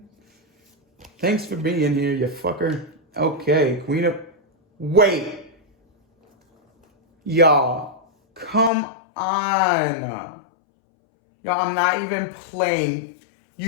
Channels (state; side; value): drops out; right; at 8.7 s